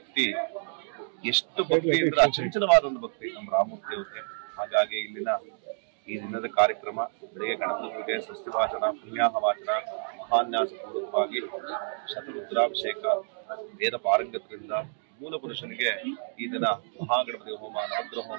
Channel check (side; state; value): left; silent; digital silence